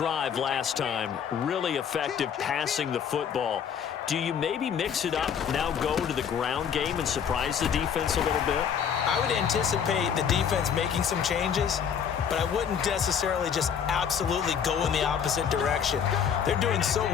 last time. Really effective passing the football. Do you maybe mix it up, now go to the ground game and surprise the defense a little bit? I would anticipate the defense making some changes, but I wouldn't necessarily just absolutely go in the opposite direction. They're doing so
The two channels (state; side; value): quieter; right; 7.7 dB